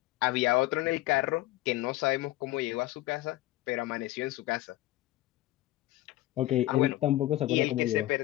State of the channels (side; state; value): right; quieter; 16.6 dB